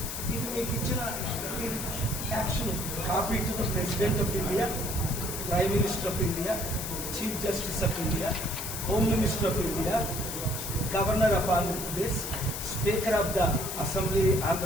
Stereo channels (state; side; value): noise; left; hiss, 6 dB below the sound